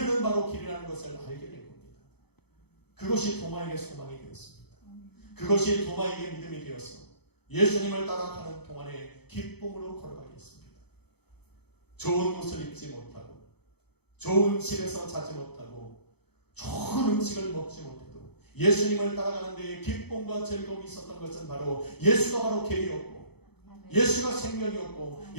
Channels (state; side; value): late; right; 0.98 ms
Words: 바로 길이라는 것을 알게 된 겁니다. 그것이 도마에게 소망이 되었습니다. 그것이 도마에게 믿음이 되어서 예수님을 따라가는 동안에 기쁨으로 걸어가게 했습니다. 좋은 옷을 입지 못하고 좋은 집에서 자지 못하고 좋은 음식을 먹지 못해도 예수님을 따라가는 데에 기쁨과 즐거움이 있었던 것은 바로 예수가 바로 길이었고 예수가 생명이었고